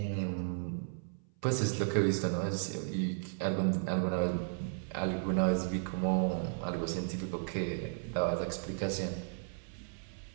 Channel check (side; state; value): left; silent; 55 dB below the other